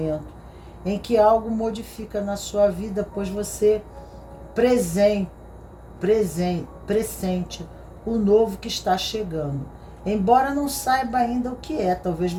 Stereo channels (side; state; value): both; identical; correlation 1.00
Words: em que algo modifica na sua vida, pois você pressente o novo que está chegando. Embora não saiba ainda o que é, talvez